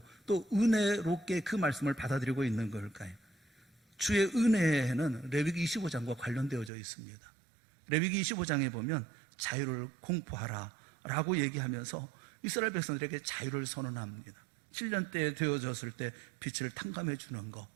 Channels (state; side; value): drops out; left; at 6.7 s